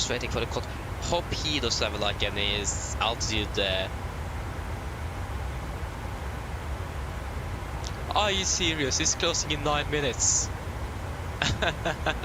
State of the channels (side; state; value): both; identical; correlation 1.00